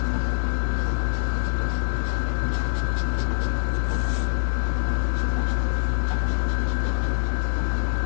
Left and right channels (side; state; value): right; silent; 59 dB below the other